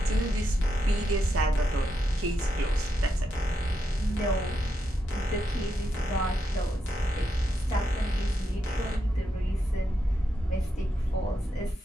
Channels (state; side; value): normal; both; correlation 0.83